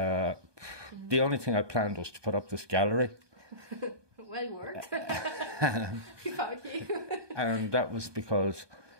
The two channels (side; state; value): left; late; 1.2 ms